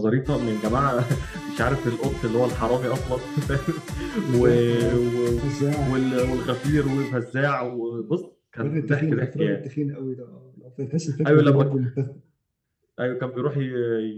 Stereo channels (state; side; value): identical; both; correlation 1.00